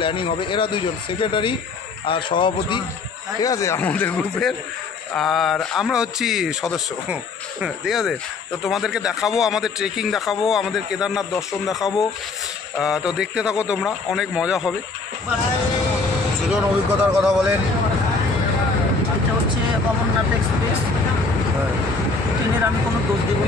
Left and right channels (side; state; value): right; quieter; 4.1 dB